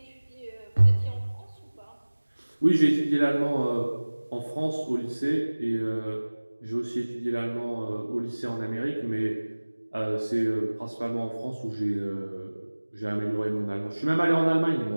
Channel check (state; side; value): inverted; both; correlation -1.00